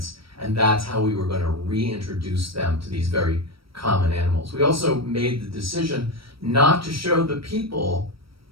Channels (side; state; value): left; late; 0.75 ms